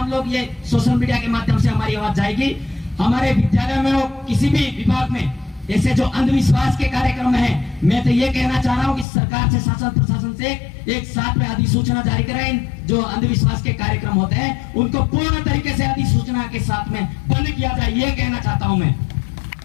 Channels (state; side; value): drops out; right; at 9.1 s